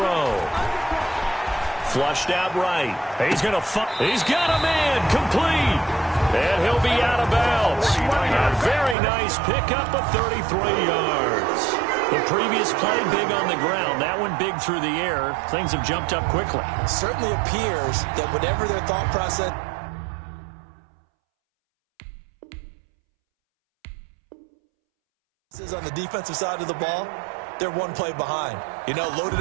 Flushed out right. He's got a man complete. And he'll be out of bounds. A very nice pickup of 33 yards. The previous play big on the ground. That one big through the air. Things have jumped up quickly. It certainly appears that whatever their thought process is on the defensive side of the ball, they're one play behind. You know, loaded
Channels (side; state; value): left; drops out; at 9.0 s